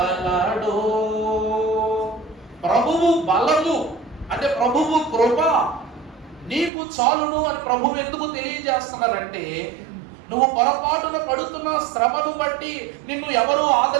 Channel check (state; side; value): drops out; left; at 6.7 s